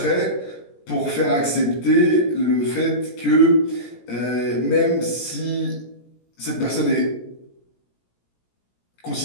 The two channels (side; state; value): right; late; 17 ms